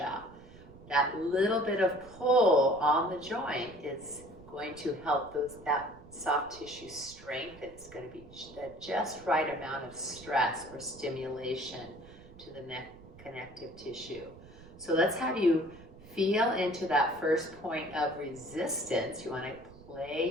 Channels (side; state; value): right; noise; rumble, 20 dB below the sound